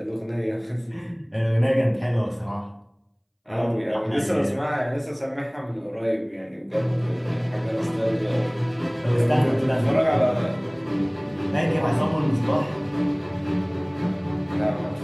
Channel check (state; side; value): identical; both; correlation 1.00